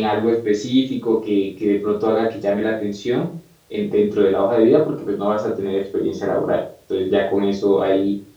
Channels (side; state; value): both; identical; correlation 1.00